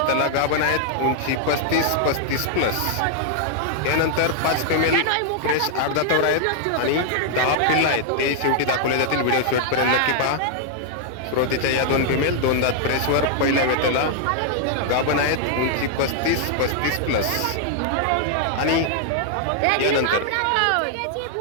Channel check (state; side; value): different; both; correlation -0.01